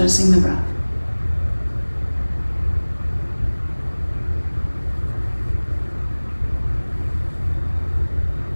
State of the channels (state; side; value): inverted; both; correlation -1.00